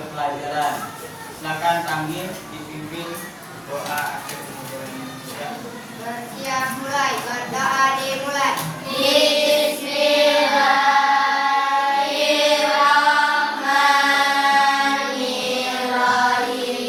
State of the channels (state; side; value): identical; both; correlation 1.00